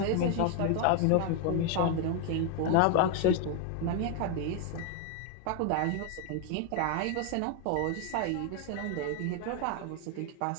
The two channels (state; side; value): different; both; correlation 0.01